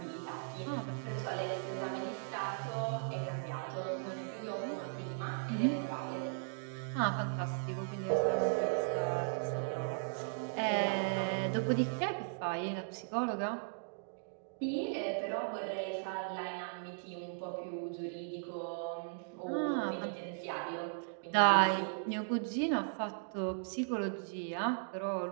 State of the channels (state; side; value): silent; left; digital silence